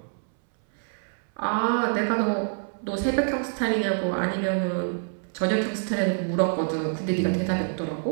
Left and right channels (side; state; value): left; silent; 61 dB below the other